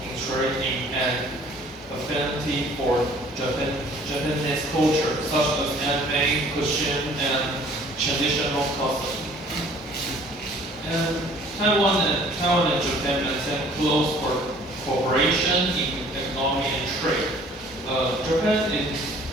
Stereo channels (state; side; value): normal; both; correlation 0.54